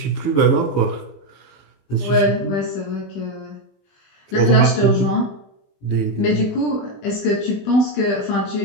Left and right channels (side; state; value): right; late; 20 ms